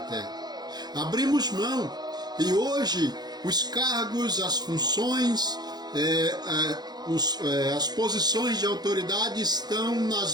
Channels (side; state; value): left; late; 0.20 ms